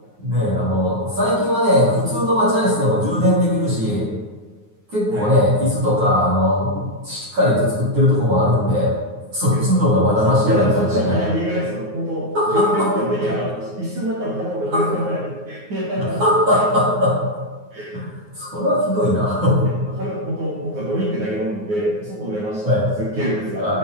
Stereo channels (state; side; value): late; left; 9.5 ms